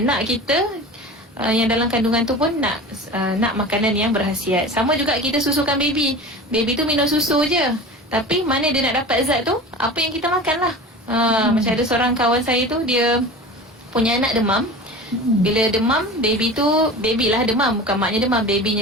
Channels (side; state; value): both; normal; correlation 0.34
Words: kita yang dalam kandungan tu pun nak makanan yang berkhasiat. Sama juga kita susukan baby. Baby tu minum susu je, tapi mana dia nak dapat zat tu? Apa yang kita makan lah. Macam ada seorang kawan saya tu, dia punya anak demam. Bila demam, baby lah demam, bukan maknya demam,